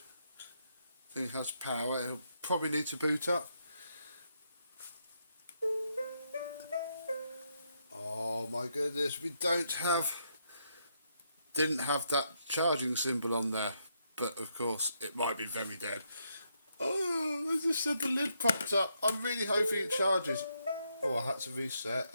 think it has power. It'll probably need to boot up. my goodness, we didn't have that charging symbol on there, but of course it might be very dead. Oh, I just said the lid popped up. I'm really hoping it charges. Oh, I had to reset.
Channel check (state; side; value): inverted; both; correlation -0.78